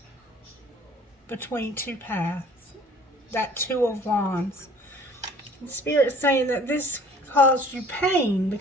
between two paths. That Two of Wands. The Spirit is saying that this caused you pain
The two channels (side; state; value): both; normal; correlation 0.52